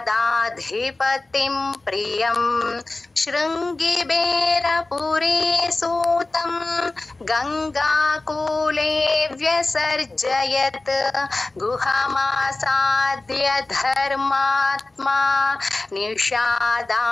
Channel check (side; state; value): right; quieter; 3.1 dB